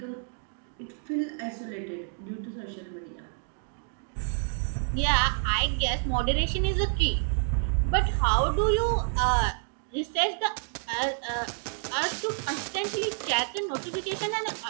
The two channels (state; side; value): silent; left; 56 dB below the other